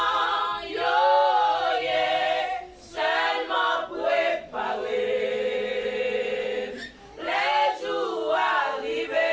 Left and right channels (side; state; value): both; identical; correlation 1.00